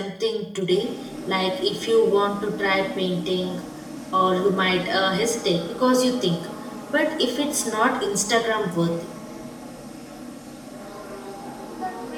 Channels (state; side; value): identical; both; correlation 1.00